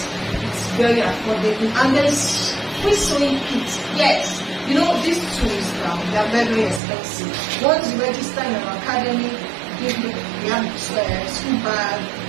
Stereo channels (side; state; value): left; drops out; at 6.8 s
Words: It's very affordable, and there's free sewing kits. Yes. You know, these tools, they are very, very expensive. Once you register in our academy, we have school bag